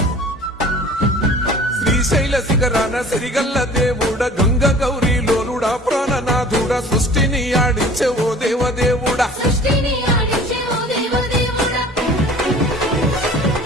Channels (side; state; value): both; normal; correlation 0.46